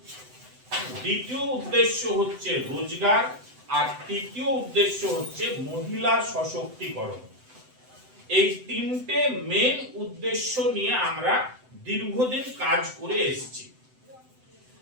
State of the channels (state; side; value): late; left; 7.9 ms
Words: দ্বিতীয় উদ্দেশ্য হচ্ছে রোজগার, আর তৃতীয় উদ্দেশ্য হচ্ছে মহিলা সশক্তিকরণ। এই তিনটে মেন উদ্দেশ্য নিয়ে আমরা দীর্ঘদিন কাজ করে এসেছি,